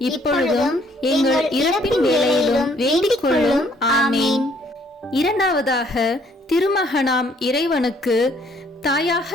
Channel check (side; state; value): both; normal; correlation 0.64